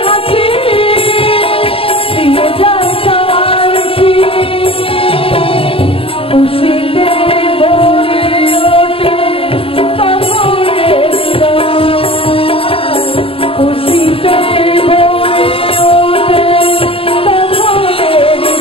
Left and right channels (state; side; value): late; right; 0.27 ms